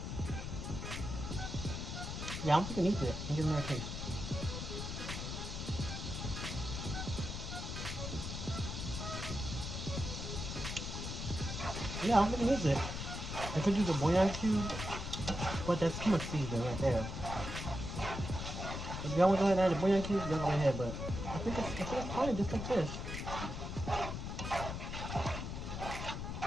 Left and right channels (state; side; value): noise; left; rumble, 5 dB below the sound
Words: Yeah, I don't think it needs it. I'm giving it a taste. Yeah, I don't think it needs it. I could use a bouillon cube, but that's too much seasoning right there. If y'all want to go ahead and add a bouillon cube, y'all go ahead, but I think it's fine just like this.